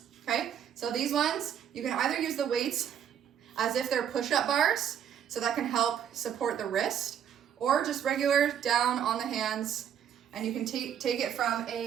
okay? So these ones, you can either use the weights as if they're push-up bars, so that can help support the wrist, or just regular down on the hands, and you can take it from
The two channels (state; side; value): quieter; left; 9.2 dB